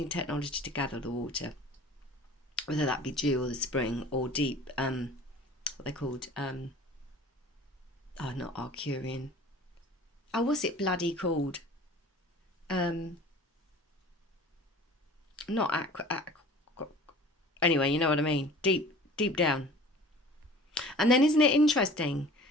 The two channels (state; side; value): normal; both; correlation 0.45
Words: technology to gather the water, whether that be dew or the spring or deep, what they're called, not Arcurian. Oh, what's it bloody called? Not anyway, you know what I mean. Deep down. And then isn't it interesting,